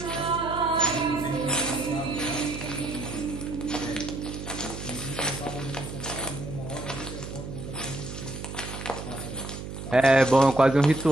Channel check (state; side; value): noise; right; hum, 9 dB below the sound